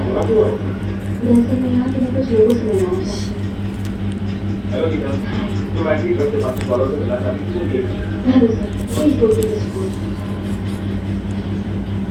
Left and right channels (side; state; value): both; identical; correlation 1.00